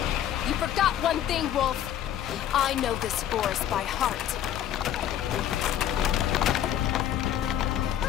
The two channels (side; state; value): right; quieter; 10.7 dB